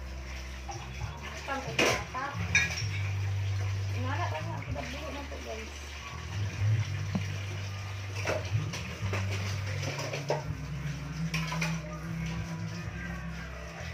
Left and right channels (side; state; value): both; identical; correlation 1.00